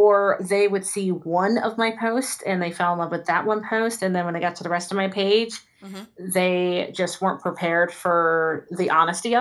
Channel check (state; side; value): identical; both; correlation 1.00